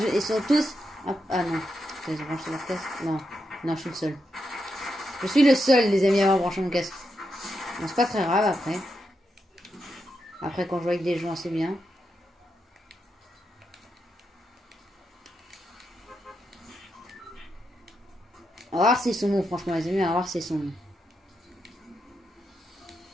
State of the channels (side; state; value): both; normal; correlation 0.84